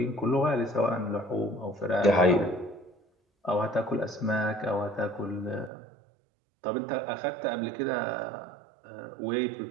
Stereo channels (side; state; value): left; drops out; at 5.7 s